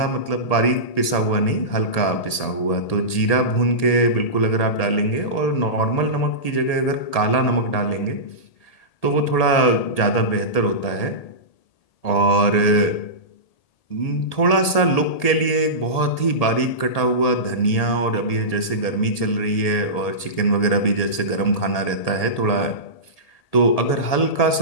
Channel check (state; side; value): late; right; 1.8 ms